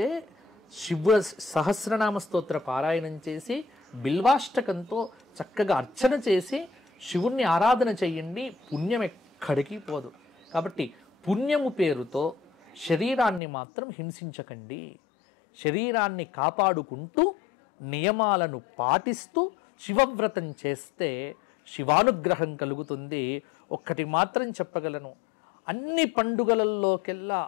శివ సహస్రనామ స్తోత్ర పారాయణం చేసి బిల్వాష్టకంతో చక్కగా అర్చన చేసి శివుణ్ణి ఆరాధన చెయ్యండి, పుణ్యం ఎక్కడికి పోదు. కాబట్టి పుణ్యము పేరుతో శరీరాన్ని మాత్రం హింసించకండి. శరీరాన్ని కాపాడుకుంటూ నియమాలను పాటిస్తూ శివవ్రతం చేస్తే శివానుగ్రహం కలుగుతుంది. ఒక్కటి మాత్రం చెప్పగలను, అన్ని పండుగలలోకెల్లా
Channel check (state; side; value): drops out; right; at 13.4 s